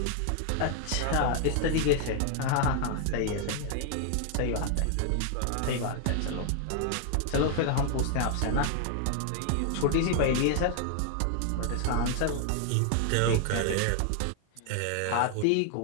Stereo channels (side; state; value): both; different; correlation 0.00